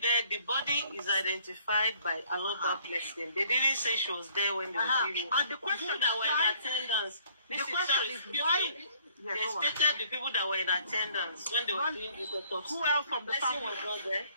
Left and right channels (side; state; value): both; inverted; correlation -0.59